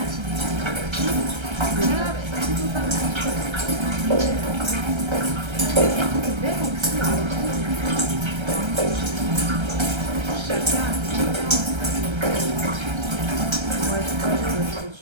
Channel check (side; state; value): left; late; 1.3 ms